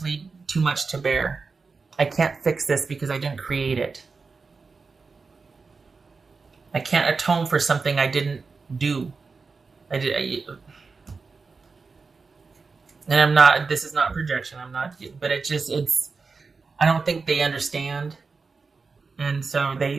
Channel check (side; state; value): left; quieter; 4.5 dB